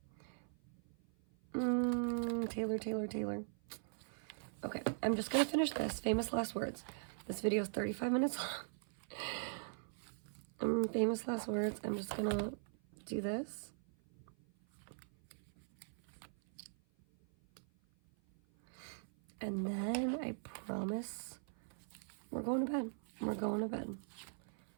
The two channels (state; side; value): silent; left; 50 dB below the other